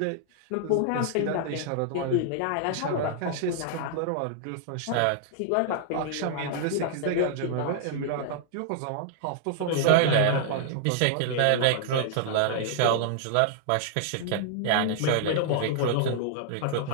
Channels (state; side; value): different; both; correlation -0.01